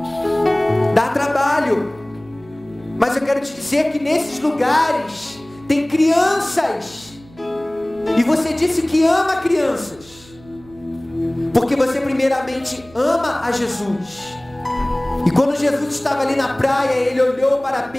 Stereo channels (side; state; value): right; noise; hum, 24 dB below the sound